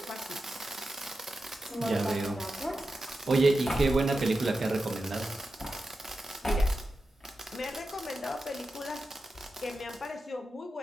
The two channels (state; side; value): normal; both; correlation 0.91